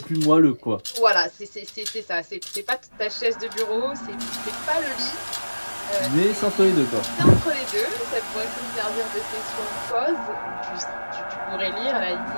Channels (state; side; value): inverted; both; correlation -1.00